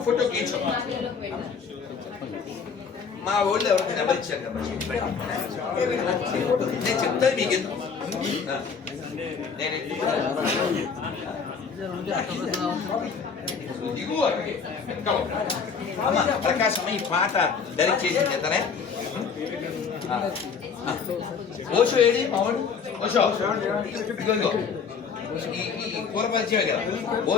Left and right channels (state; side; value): quieter; right; 5.9 dB